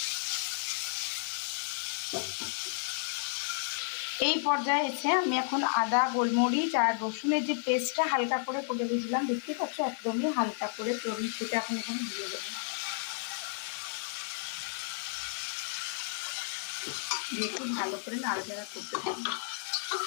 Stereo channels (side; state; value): right; silent; digital silence